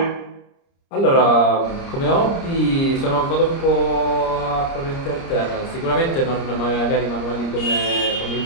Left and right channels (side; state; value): right; late; 30 ms